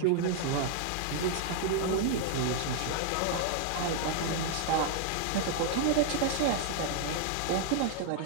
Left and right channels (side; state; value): both; different; correlation 0.00